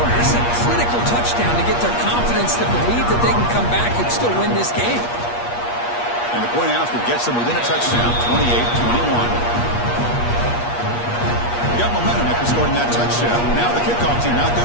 This is a critical touchdown to get their confidence to believe that they can come back and still win this game. And the point after gets them within a touchdown, 28-21. Got momentum after scoring that touchdown. Now the kickoff team out there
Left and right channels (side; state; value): right; late; 8.4 ms